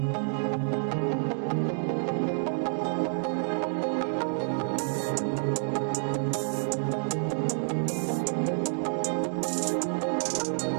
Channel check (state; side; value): silent; left; digital silence